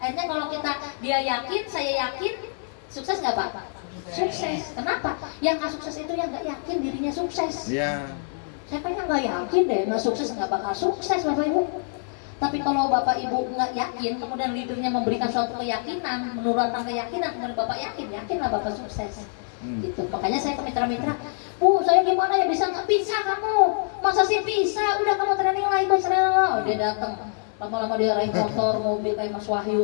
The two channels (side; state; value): right; silent; 62 dB below the other